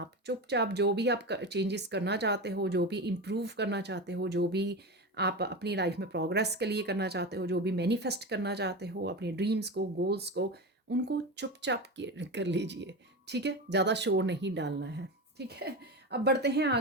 चुपचाप जो भी आप चेंजेस करना चाहते हो, जो भी इम्प्रूव करना चाहते हो, जो भी आप अपनी लाइफ में प्रोग्रेस के लिए करना चाहते हो, जो भी मैनिफेस्ट करना चाहते हो, अपने ड्रीम्स को, गोल्स को, उनको चुपचाप कर लीजिए, ठीक है। ज़्यादा शोर नहीं डालना है, ठीक है। अब बढ़ते हैं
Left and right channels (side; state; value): both; normal; correlation 0.22